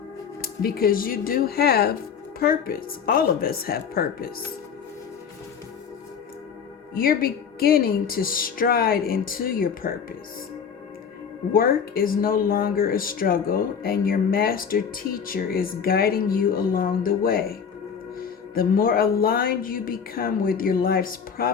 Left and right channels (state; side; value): quieter; right; 6.9 dB